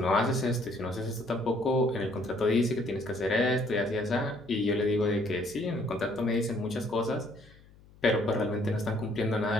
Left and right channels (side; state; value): left; noise; hum, 25 dB below the sound